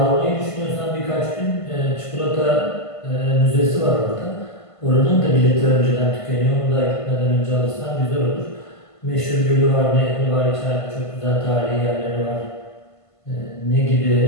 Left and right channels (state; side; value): late; right; 1.5 ms